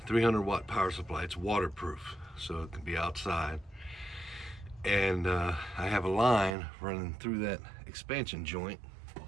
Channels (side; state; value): left; drops out; at 6.5 s